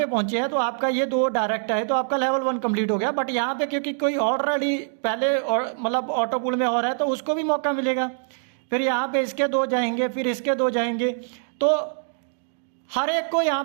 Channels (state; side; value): silent; left; digital silence